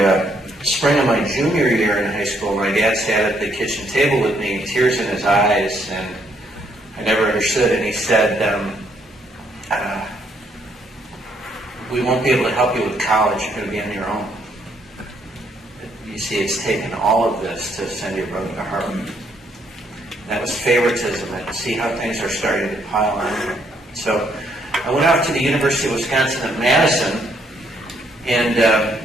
spring of my junior year in high school, my dad sat at the kitchen table with me, tears in his eyes, and I never understood. And he said, "We won't be able to help you with college. You're going to be on your own. You see, it's taken all of this to send your brother to Harvard." That was favoritism. And see how things are starting to pile on. So I went off to the University of Wisconsin at Madison, and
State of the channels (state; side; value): normal; both; correlation 0.71